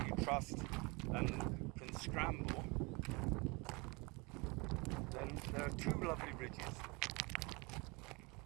you trust and can scramble, then there are 2 lovely ridges.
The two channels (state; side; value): quieter; left; 27.1 dB